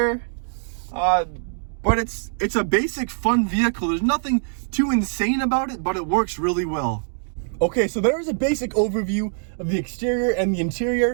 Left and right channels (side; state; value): left; silent; digital silence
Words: But it's a basic fun vehicle. There's nothing too insane about it, but it works really well. Okay, so there is a basic overview of the exterior and the